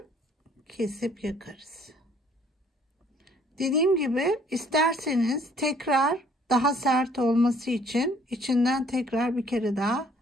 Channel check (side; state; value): both; normal; correlation 0.59